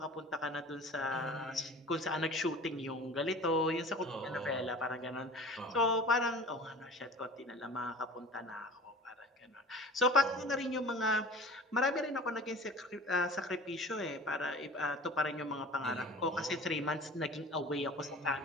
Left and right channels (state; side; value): normal; both; correlation 0.41